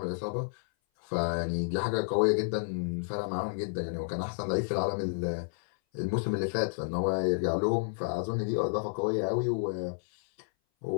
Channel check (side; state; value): right; silent; 57 dB below the other